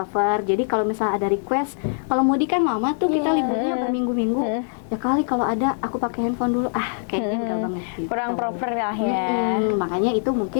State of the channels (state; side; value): silent; right; 58 dB below the other